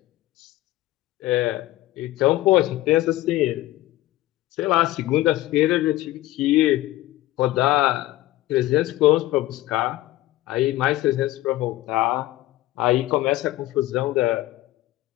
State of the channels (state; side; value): quieter; right; 16.4 dB